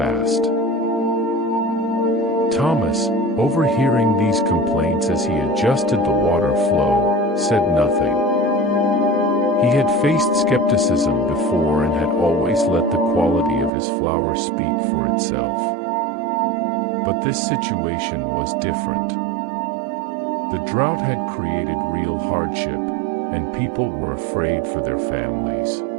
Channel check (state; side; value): drops out; left; at 13.7 s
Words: Thomas, overhearing these complaints as he adjusted the water flow, said nothing. He had faced skepticism before and had always let the quality of his flower speak for itself. But this situation was different. The drought had created real hardship, and people were afraid for their families.